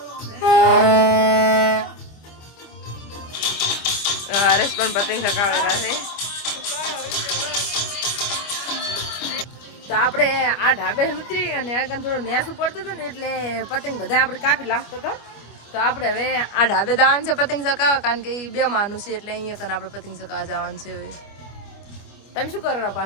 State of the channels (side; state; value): right; late; 25 ms